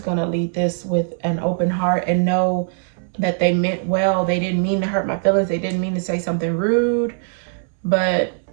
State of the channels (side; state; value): left; silent; 64 dB below the other